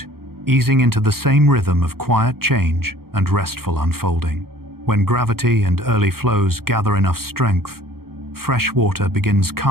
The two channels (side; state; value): left; late; 0.94 ms